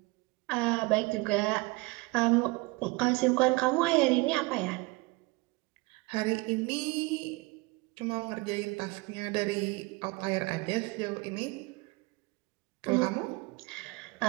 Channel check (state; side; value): quieter; left; 25.0 dB